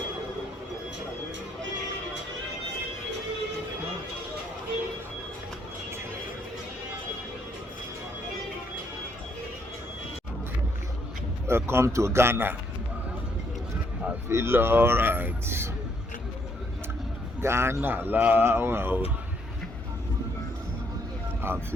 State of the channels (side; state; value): both; normal; correlation 0.71